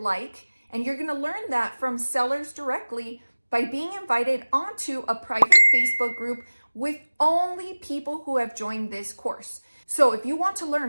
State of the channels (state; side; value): inverted; both; correlation -1.00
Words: like, and you're going to learn that from sellers directly by being invited onto a private Facebook group with only people who have joined this course. So if you want to